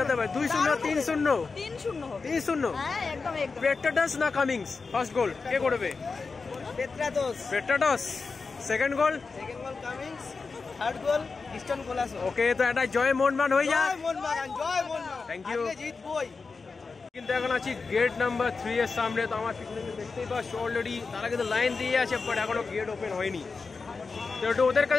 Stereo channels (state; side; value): quieter; right; 4.5 dB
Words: হতে পারে? 2-0 3-0? 3-0 হবে। 3-0? হ্যাঁ, একদম। পেট্রাটাস না কামিংস? ফার্স্ট গোল কে করবে? Petratos. Second goal Cummings. Third goal Liston Colaco. Okay, তো এটা জয় মোহনবাগান হয়ে যাক। জয় মোহনবাগান। Thank you. আজকে জিতবই। কিন্তু এখন আছি গেট নাম্বার 3 এর সামনে। তো আমার পিছনে দেখতেই পাচ্ছ অলরেডি তারা কিন্তু লাইন দিয়ে আছে, বাট এখনো গেট ওপেন হয়নি। তো একটু ওদের